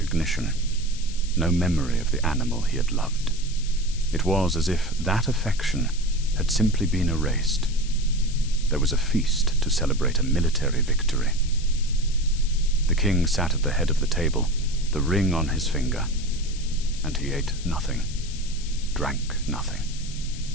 no memory of the animal he had loved. It was as if that affection had simply been erased. There was a feast to celebrate a military victory. The king sat at the head of the table, the ring on his finger, and he ate nothing, drank nothing,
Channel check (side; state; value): left; noise; hiss, 14 dB below the sound